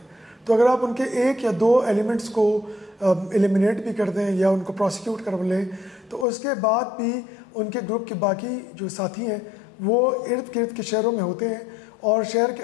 तो अगर आप उनके एक या दो एलिमेंट्स को एलिमिनेट भी कर दें या उनको प्रोसिक्यूट कर लें तो उसके बाद भी उनके ग्रुप के बाकी जो साथी हैं वो इर्द गिर्द के शहरों में होते हैं और शहर के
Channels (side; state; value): right; drops out; at 6.2 s